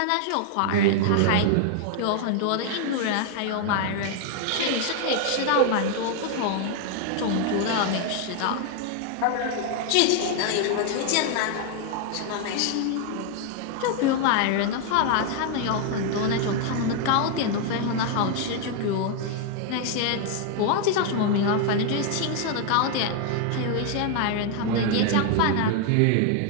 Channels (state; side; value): different; both; correlation 0.00